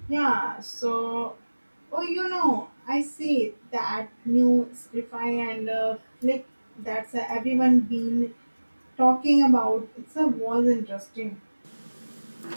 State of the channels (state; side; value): inverted; both; correlation -1.00